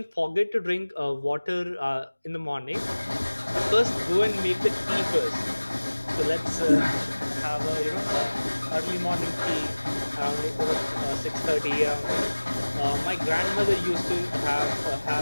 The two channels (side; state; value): both; inverted; correlation -1.00